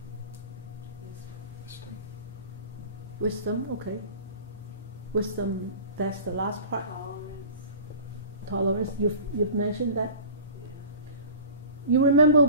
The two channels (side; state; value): both; inverted; correlation -0.40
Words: Wisdom. Okay. Wisdom. That's the last part. Tolerance. You've mentioned that. Yeah. You remember